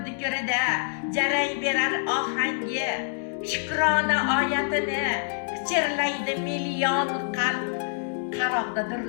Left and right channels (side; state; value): right; silent; digital silence